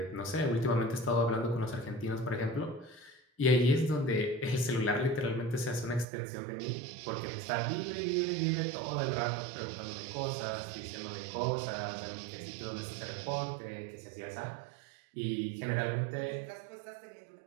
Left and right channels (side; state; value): left; drops out; at 6.1 s